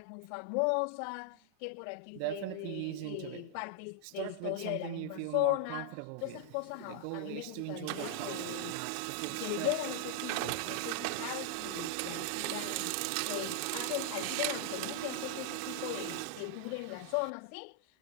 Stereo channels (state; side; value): different; both; correlation -0.01